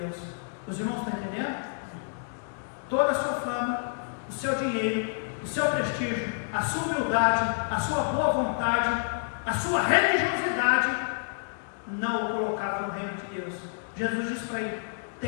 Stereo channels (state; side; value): silent; right; digital silence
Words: Os irmãos estão entendendo? Toda a sua fama, o seu dinheiro, o seu prestígio, a sua humildade, a sua boa vontade, a sua religiosidade, não o colocava no reino de Deus. Jesus diz para ele: